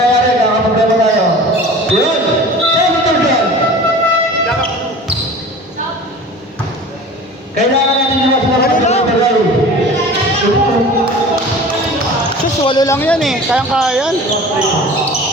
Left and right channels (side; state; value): both; normal; correlation 0.40